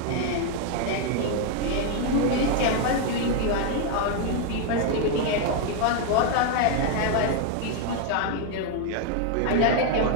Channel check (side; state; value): both; different; correlation 0.01